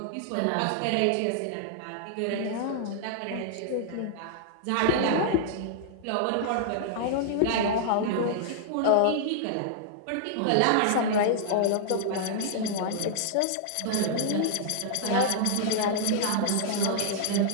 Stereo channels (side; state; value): both; different; correlation -0.01